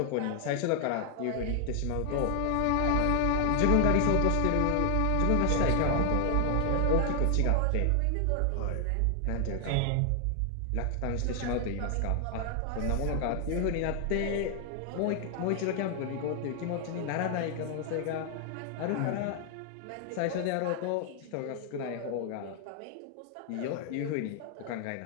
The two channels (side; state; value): both; different; correlation 0.00